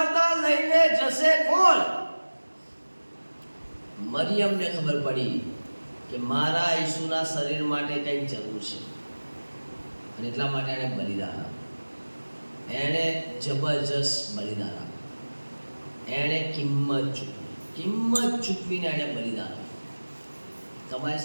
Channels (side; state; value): both; inverted; correlation -1.00